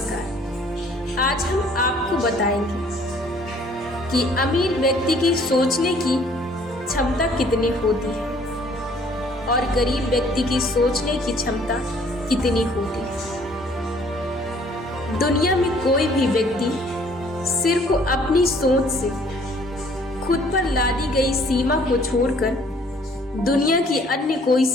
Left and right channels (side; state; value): both; normal; correlation 0.58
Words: आज हम आपको बताएंगे कि अमीर व्यक्ति की सोचने की क्षमता कितनी होती है और गरीब व्यक्ति की सोचने की क्षमता कितनी होती है। दुनिया में कोई भी व्यक्ति सिर्फ अपनी सोच से खुद पर लादी गई सीमा को छोड़कर दुनिया की अन्य कोई